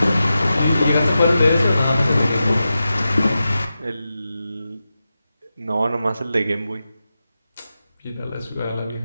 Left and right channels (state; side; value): inverted; both; correlation -0.91